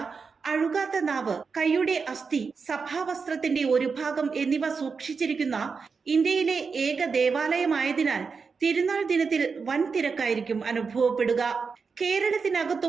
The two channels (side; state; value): left; quieter; 5.2 dB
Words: അഴുകാത്ത നാവ്, കൈയുടെ അസ്ഥി, സഭാവസ്ത്രത്തിന്റെ ഒരു ഭാഗം എന്നിവ സൂക്ഷിച്ചിരിക്കുന്ന ഇന്ത്യയിലെ ഏക ദേവാലയമായതിനാൽ തിരുനാൾ ദിനത്തിൽ വൻ തിരക്കായിരിക്കും അനുഭവപ്പെടുക.